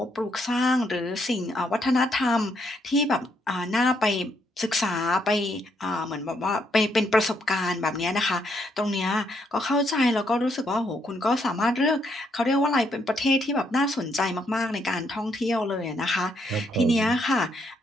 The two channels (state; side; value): normal; both; correlation 0.74